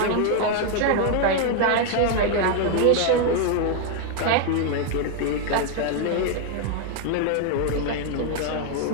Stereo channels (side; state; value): both; different; correlation 0.00